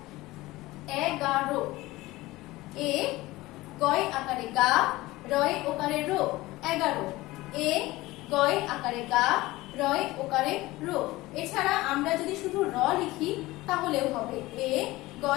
11। এ গয় আকারে গা, রয় ওকারে রো 11। এ গয় আকারে গা, রয় ওকারে রো। এছাড়া আমরা যদি শুধু র লিখি তাহলেও হবে। এ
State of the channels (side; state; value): right; quieter; 19.1 dB